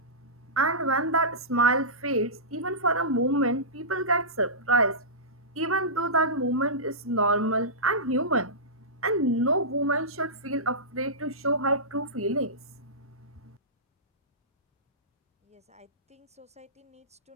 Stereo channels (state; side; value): normal; both; correlation -0.17